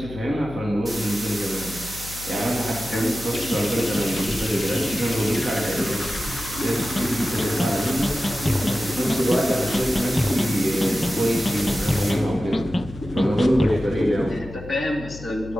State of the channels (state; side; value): noise; left; hum, 14 dB below the sound